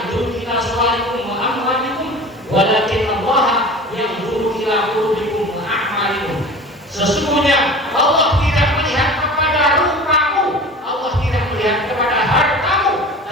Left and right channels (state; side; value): normal; both; correlation 0.38